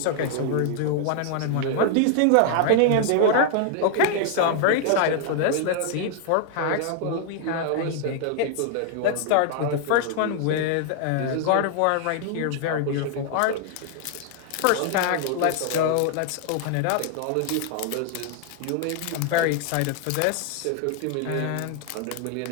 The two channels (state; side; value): different; both; correlation 0.00